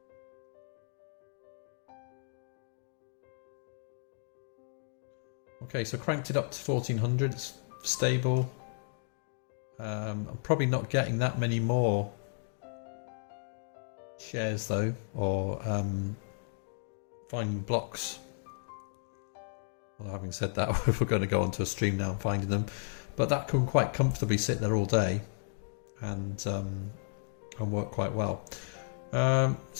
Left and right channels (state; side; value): silent; right; digital silence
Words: Okay, so cranked it up to 1400, it's stable. I'm probably not getting that many more shares though, or finding blocks. Well, having said that, if we're going to go onto a stream now and finding them, but that can quite comfortably sit there all day and and work quite well.